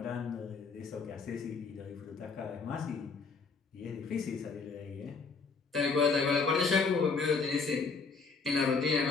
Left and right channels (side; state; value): right; quieter; 4.7 dB